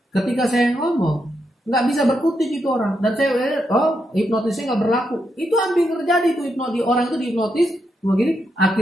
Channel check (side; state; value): both; normal; correlation 0.82